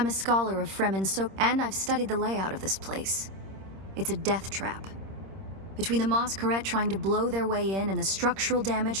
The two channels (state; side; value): late; left; 26 ms